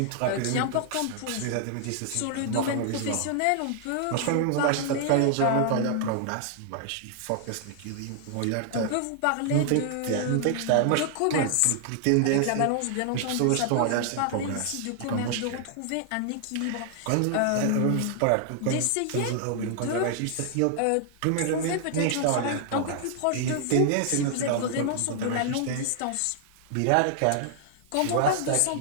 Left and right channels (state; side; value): different; both; correlation 0.00